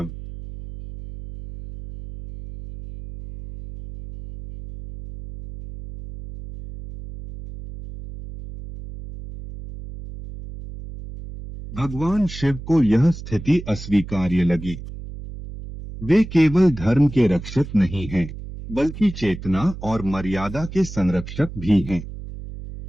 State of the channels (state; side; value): noise; right; hum, 12 dB below the sound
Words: भगवान शिव को यह स्थिति अस्वीकार्य लगी। वे केवल धर्म के रक्षक नहीं हैं, बल्कि चेतना और मर्यादा के संरक्षक भी हैं।